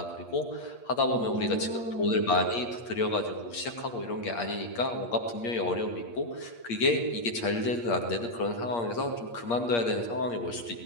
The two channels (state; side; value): late; right; 8.5 ms